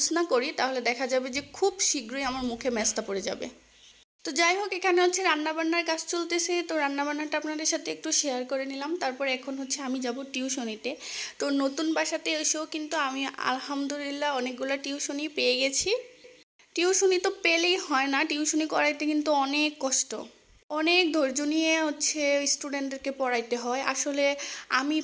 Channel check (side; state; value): both; identical; correlation 1.00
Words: না করি তাহলে দেখা যাবে যে খুব শীঘ্রই আমার মুখে মেস্তা পড়ে যাবে। তো যাই হোক, এখানে হচ্ছে রান্নাবান্নার কাজ চলতেছে, তো রান্নাবান্নাটা আপনাদের সাথে একটু শেয়ার করে নিলাম। তারপর এখন হচ্ছে আমি যাব টিউশনিতে। তো নতুন বাসাতে এসেও কিন্তু আমি আলহামদুলিল্লাহ অনেকগুলো টিউশনি পেয়ে গেছি। টিউশনি তো পেলেই হয় না, টিউশনি করাইতে কিন্তু অনেক কষ্ট, অনেক ধৈর্য নিয়ে হচ্ছে স্টুডেন্টদেরকে পড়াইতে হয়। আসলে আমি